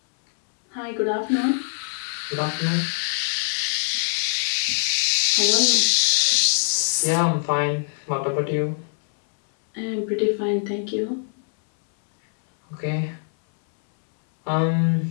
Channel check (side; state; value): right; silent; 63 dB below the other